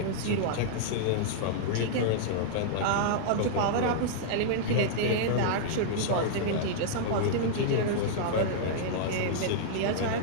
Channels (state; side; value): different; both; correlation -0.02